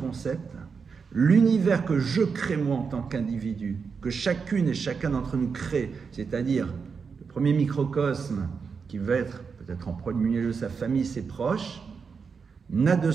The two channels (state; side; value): quieter; left; 5.6 dB